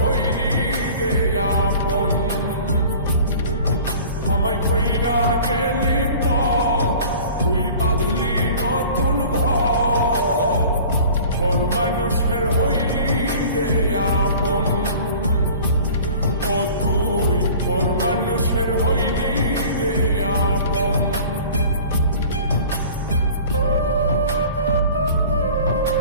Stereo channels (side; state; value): both; inverted; correlation -0.45